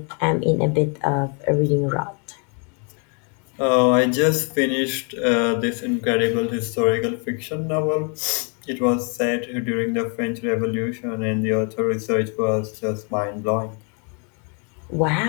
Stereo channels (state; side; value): quieter; right; 37.5 dB